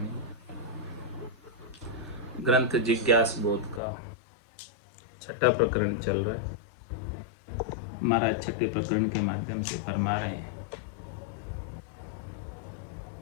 ग्रंथ जिज्ञास बोध का छठा प्रकरण चल रहा है। महाराज छठे प्रकरण के माध्यम से फरमा रहे हैं,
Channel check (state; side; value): drops out; right; at 3.8 s